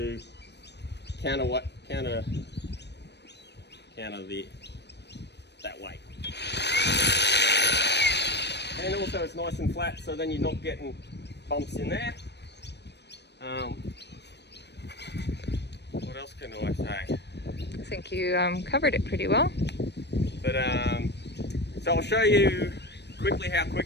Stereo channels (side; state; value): right; late; 0.50 ms